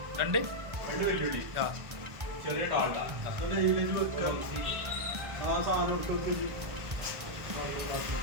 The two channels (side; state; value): left; late; 1.3 ms